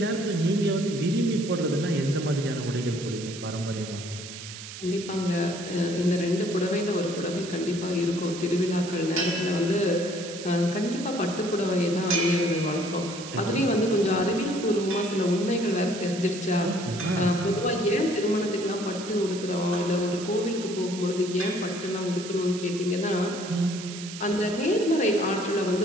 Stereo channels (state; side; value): noise; right; hiss, 12 dB below the sound